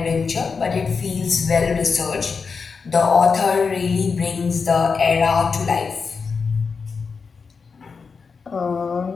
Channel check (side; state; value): right; quieter; 5.2 dB